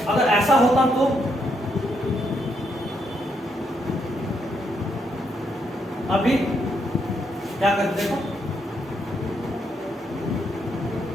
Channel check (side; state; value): both; normal; correlation 0.77